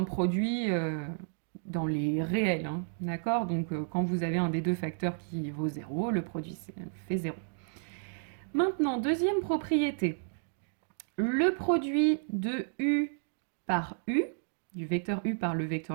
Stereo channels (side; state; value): left; silent; digital silence